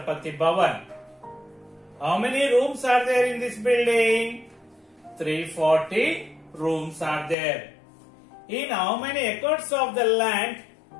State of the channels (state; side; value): drops out; right; at 7.4 s